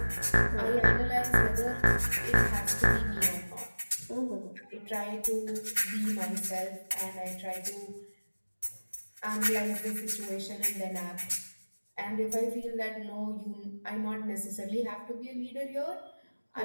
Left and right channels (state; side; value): inverted; both; correlation -1.00